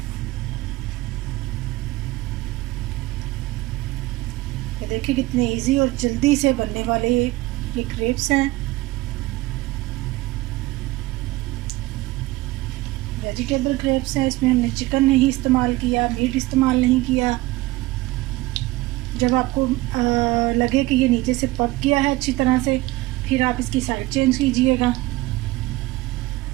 ये देखिए कितने इजी और जल्दी से बनने वाले ये क्रेप्स हैं। वेजिटेबल क्रेप्स हैं, इसमें हमने चिकन नहीं इस्तेमाल किया, मीट इस्तेमाल नहीं किया। जब आपको लगे कि ये नीचे से पक गया है अच्छी तरह से, फिर आप इसकी साइड चेंज कीजिएगा।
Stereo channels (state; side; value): quieter; left; 19.4 dB